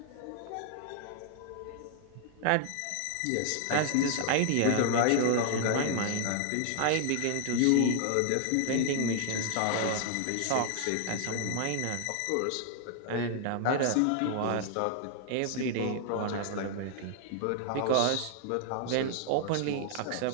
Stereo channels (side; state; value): both; different; correlation 0.00